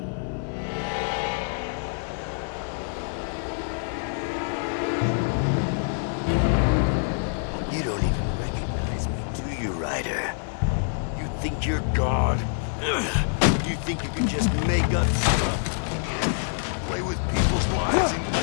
You don't even recognize me, do you, Ryder? You think you're God? You think you can just make up stuff?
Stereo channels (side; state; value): right; silent; 61 dB below the other